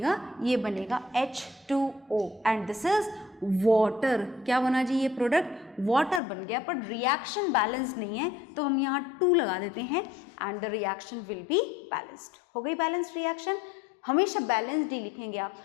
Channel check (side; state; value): right; drops out; at 6.2 s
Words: ये बनेगा H2O and this is water. क्या बना जी? ये प्रोडक्ट वाटर बन गया। पर रिएक्शन बैलेंस नहीं है तो हम यहाँ 2 लगा देते हैं and the reaction will be balanced. हो गई बैलेंस्ड रिएक्शन। हमेशा बैलेंस्ड ही लिखेंगे आप।